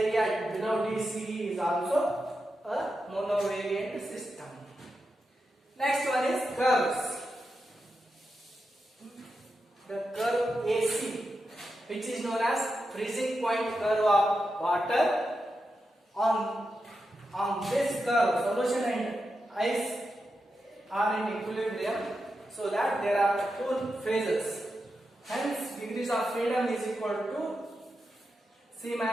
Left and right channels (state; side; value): normal; both; correlation 0.88